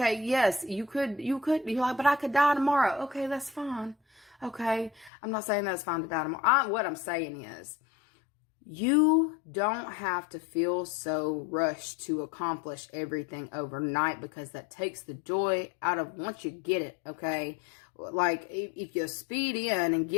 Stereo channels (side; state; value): right; drops out; at 5.1 s